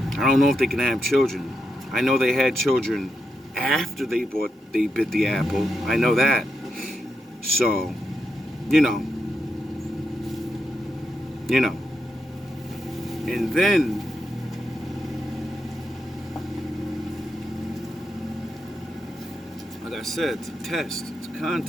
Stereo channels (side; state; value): both; normal; correlation 0.84